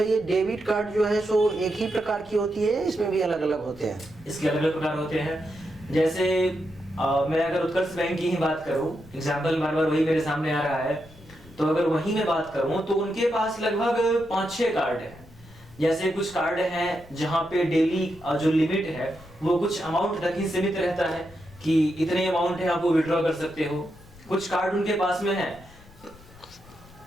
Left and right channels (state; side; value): noise; left; rumble, 23 dB below the sound